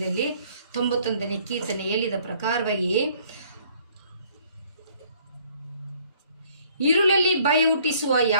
91ನೇ ಕೀರ್ತನೆ ಹೇಳಿದ ಪ್ರಕಾರವಾಗಿ ഇരുಳಲ್ಲಿ ಭಯ ಹುಟ್ಟಿಸುವ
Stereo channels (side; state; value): both; inverted; correlation -0.60